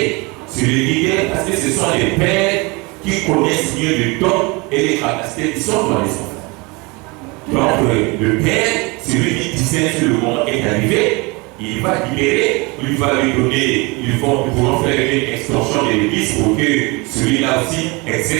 C'est le leader parce que ce sont les pères qui connaissent mieux le don et les capacités qui sont dans les enfants. Donc, le père, celui qui disait que le moment est arrivé, il va libérer, il va lui donner, ils pourront faire une extension de l'église pour que celui-là aussi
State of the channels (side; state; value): left; quieter; 26.9 dB